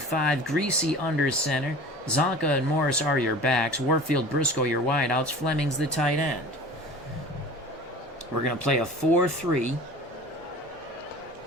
Greasy under center. Zonka and Morris are your backs. Warfield, Briscoe, your wideouts. Fleming's the tight end. We're going to play a 4-3.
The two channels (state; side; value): normal; both; correlation 0.40